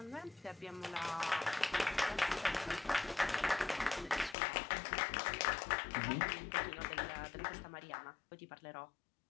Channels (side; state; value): right; drops out; at 4.4 s